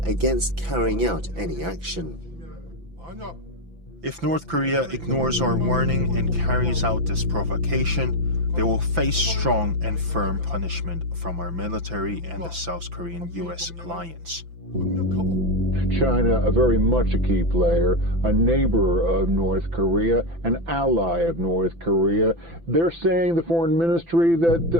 against carrying out any action. If North Korea ignores our warning and carries out this provocation, they will face strong and firm punishment from our military and the South Korean-US alliance. China, a very much a key player, a neighbor of North Korea, an ally of North Korea. They're saying, the foreign ministry,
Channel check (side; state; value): left; late; 5.9 ms